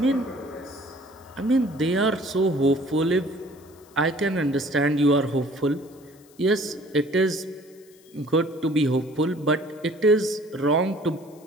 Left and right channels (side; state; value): left; noise; hiss, 28 dB below the sound